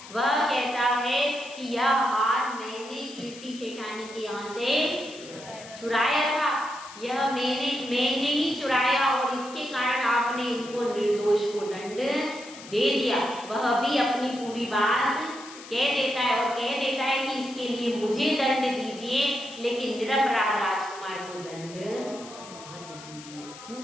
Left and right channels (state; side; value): noise; left; hiss, 16 dB below the sound